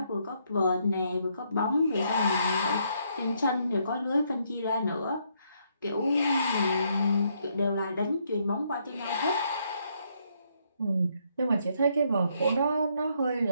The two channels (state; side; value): inverted; both; correlation -0.73